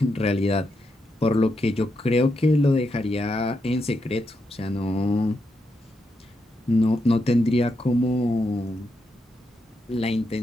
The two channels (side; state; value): both; normal; correlation 0.83